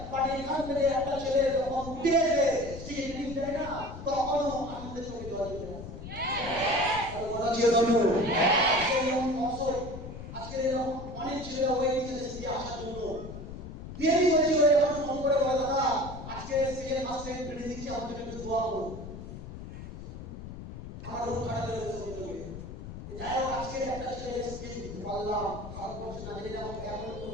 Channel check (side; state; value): left; noise; rumble, 11 dB below the sound